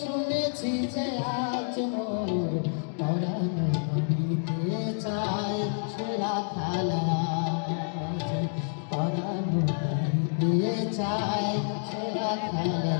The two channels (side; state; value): right; silent; digital silence